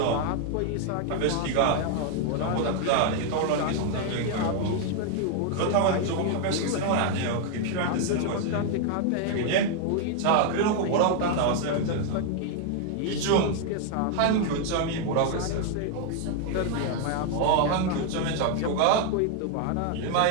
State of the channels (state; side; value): different; both; correlation 0.00